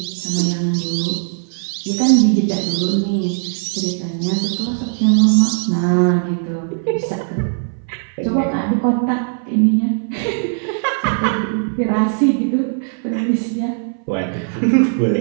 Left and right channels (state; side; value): silent; left; 61 dB below the other